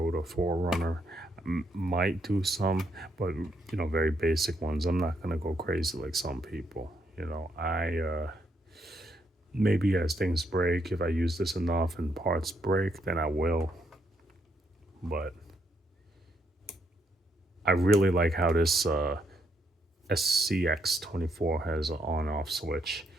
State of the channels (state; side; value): normal; both; correlation 0.76